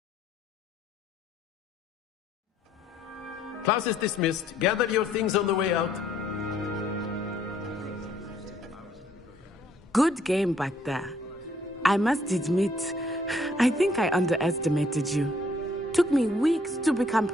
Class is dismissed. Gather your things on the way out. Good game back there. I must admit, I think I underestimated you. Took me weeks to become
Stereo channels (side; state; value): both; normal; correlation 0.65